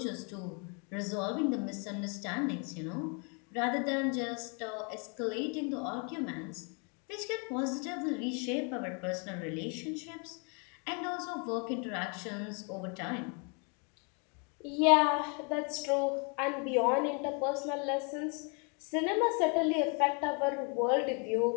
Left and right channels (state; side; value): quieter; right; 36.1 dB